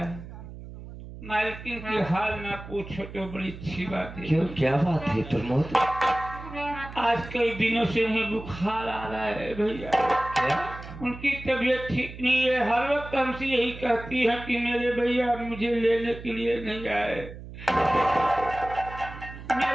मालकिन की हाल ना पूछो तो बड़ी अच्छी बात है। क्यों क्या बात है प्रमोद? आज कई दिनों से उन्हें बुखार आ रहा है भैया। क्या? उनकी तबीयत ठीक नहीं है, हर वक्त हमसे यही कहती है कि मेरे भैया मुझे लेने के लिए नहीं आए।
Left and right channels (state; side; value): noise; right; hum, 13 dB below the sound